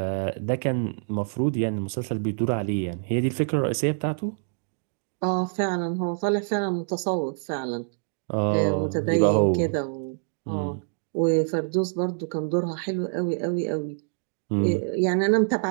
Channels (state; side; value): silent; left; digital silence